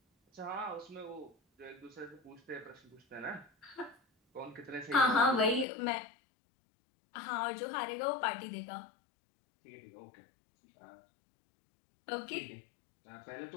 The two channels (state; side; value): drops out; right; at 5.7 s